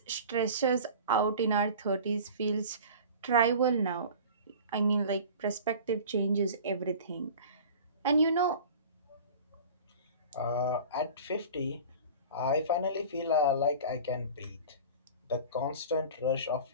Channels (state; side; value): inverted; both; correlation -0.39